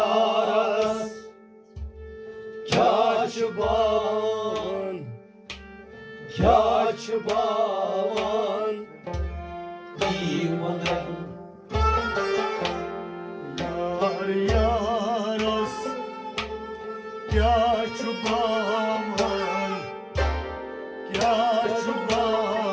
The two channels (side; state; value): both; identical; correlation 1.00